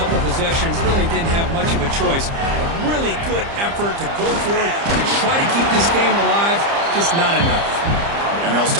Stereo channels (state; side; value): late; left; 30 ms